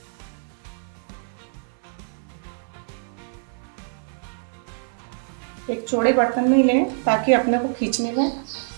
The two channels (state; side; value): silent; left; 62 dB below the other